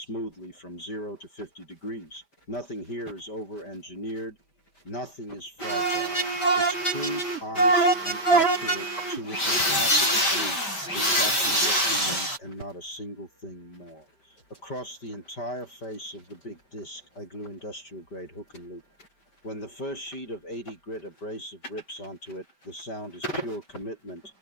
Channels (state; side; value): late; right; 5.1 ms